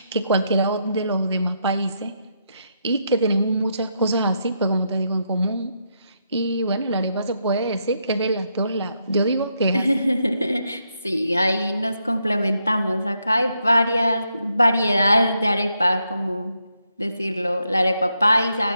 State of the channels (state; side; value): inverted; both; correlation -0.79